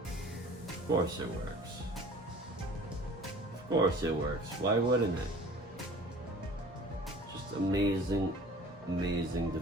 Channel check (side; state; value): both; normal; correlation 0.46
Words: Of course it works. Of course it works. Why wouldn't it? Just amazing, amazing